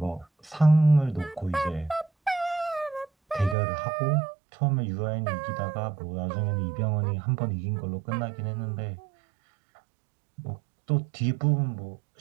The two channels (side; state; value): left; drops out; at 3.6 s